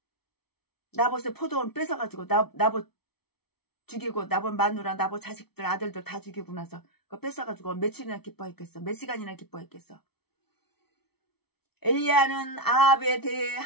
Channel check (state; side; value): late; right; 0.97 ms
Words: 나봇의 포도원 뺏어가지고 나봇 죽이고 나봇 마누라 나봇 자식들 아들들 다 죽이고 나서 그거 뺏어가지고 며칠이나 기뻐했겠어? 몇 시간이나 기뻐했겠어? 엘리야는 아합에 대해